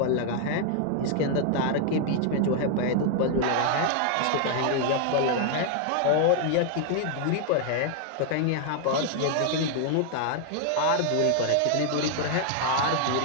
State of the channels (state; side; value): different; both; correlation 0.00